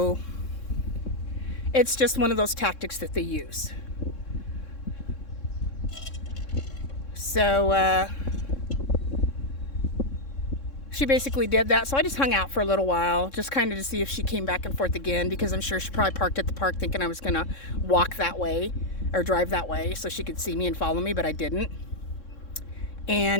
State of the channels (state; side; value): late; right; 3.6 ms